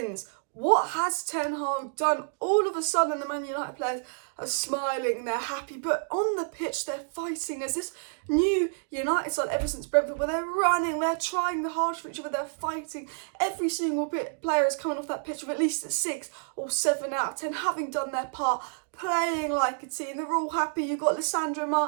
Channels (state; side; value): silent; left; digital silence